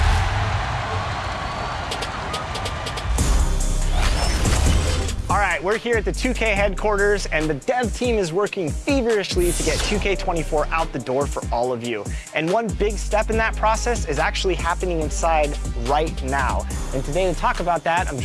All right, we're here at the 2K headquarters, and the dev team is working feverishly to get 2K24 out the door for all of you. And one big step in that process is actually happening inside right now. And today to talk about that, I'm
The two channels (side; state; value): both; identical; correlation 1.00